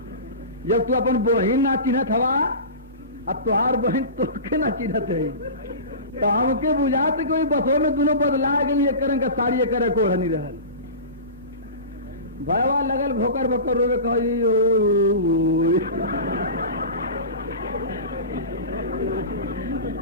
जब तू अपन बहिन ना चिन्हत हवा अब तुहार बहन तोके ना चिन्हत है तो हमके बुझात कोई बसों में दोनों बदला गई एक रंग का साड़ी एक रंग ओढ़नी रहल। भयवा लगल भोकर भोकर रोवे कही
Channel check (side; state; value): both; inverted; correlation -0.30